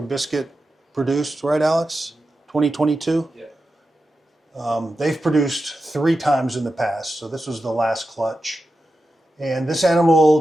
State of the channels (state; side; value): normal; both; correlation 0.91